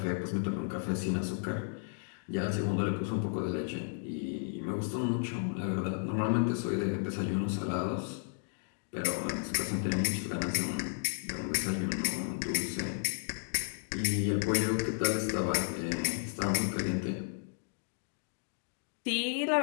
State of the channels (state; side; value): silent; right; digital silence